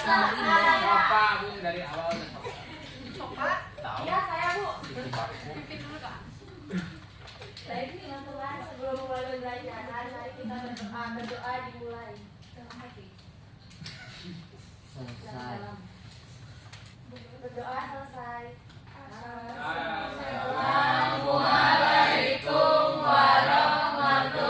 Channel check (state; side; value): identical; both; correlation 1.00